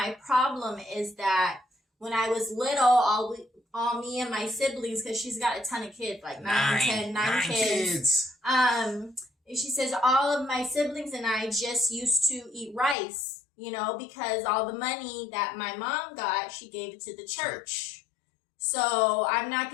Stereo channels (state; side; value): drops out; right; at 13.0 s